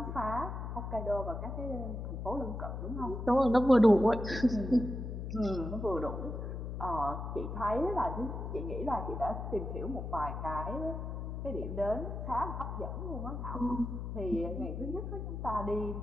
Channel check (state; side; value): noise; left; hum, 5 dB below the sound